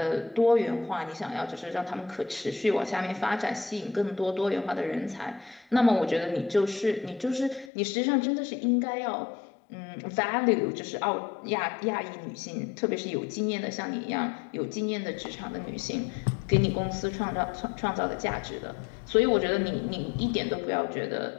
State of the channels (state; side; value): drops out; right; at 7.7 s